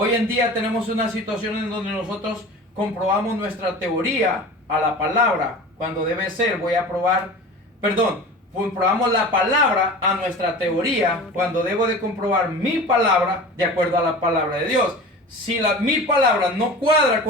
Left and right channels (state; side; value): normal; both; correlation 0.36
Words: en día tenemos una situación en donde nosotros comprobamos nuestra teoría a la palabra, cuando debe ser, comprobamos la palabra a nuestra teoría, cuando debo de comprobar mi palabra de acuerdo a la palabra de Dios. Si mi palabra no cuadra